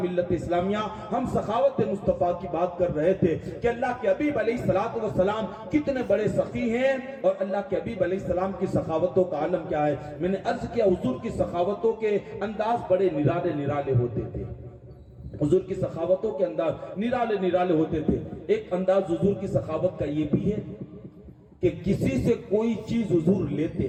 ملت اسلامیہ ہم سخاوت مصطفیٰ کی بات کر رہے تھے کہ اللہ کے حبیب علیہ الصلوۃ والسلام کتنے بڑے سخی ہیں اور اللہ کے حبیب علیہ السلام کی سخاوتوں کا عالم کیا ہے. میں نے عرض کیا حضور کی سخاوتوں کے انداز بڑے نرالے نرالے ہوتے تھے. حضور کی سخاوتوں کے انداز نرالے نرالے ہوتے تھے. ایک انداز حضور کی سخاوت کا یہ بھی ہے کہ کسی سے کوئی چیز حضور لیتے,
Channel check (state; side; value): identical; both; correlation 1.00